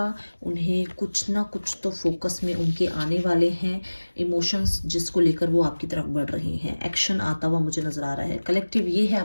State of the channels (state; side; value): inverted; both; correlation -1.00